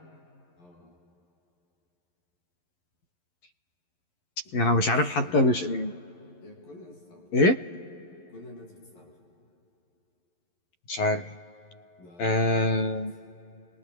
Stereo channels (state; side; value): late; right; 11 ms